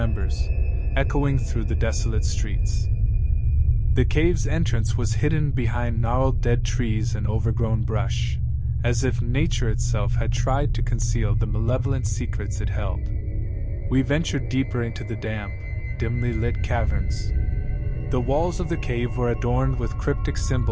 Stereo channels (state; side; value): identical; both; correlation 1.00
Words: echoing through the desolate streets. The cave's entrance was hidden behind gnarled dead trees and overgrown brush, as if nature itself had tried to conceal the malevolent secrets it held. We ventured deeper into the damp, dimly lit caverns. The walls of the cave were adorned with cryptic